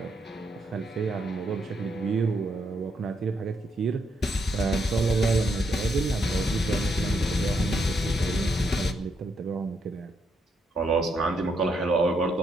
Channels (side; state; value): both; normal; correlation 0.77